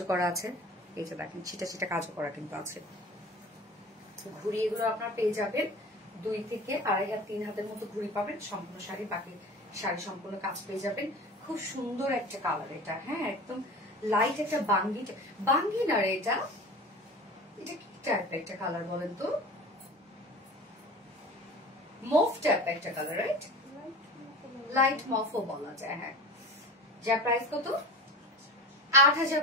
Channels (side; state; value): both; normal; correlation 0.35